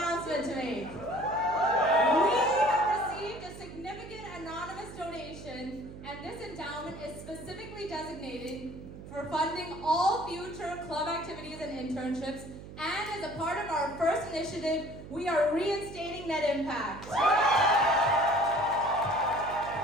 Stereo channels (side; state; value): right; noise; hum, 14 dB below the sound